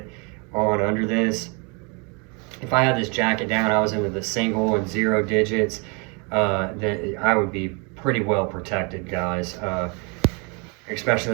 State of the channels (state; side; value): quieter; left; 32.4 dB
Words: on under this. If I had this jacket down, I was into the single and 0 digits, then I would be pretty well protected, guys. Especially